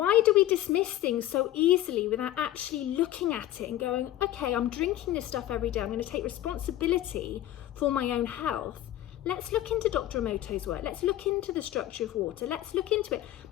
do we dismiss things so easily without actually looking at it and going, okay, I'm drinking this stuff every day. I'm going to take responsibility for my own health. Let's look into Dr. Emoto's work. Let's look into the structure of water. Let's look into it.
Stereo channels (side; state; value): right; quieter; 13.7 dB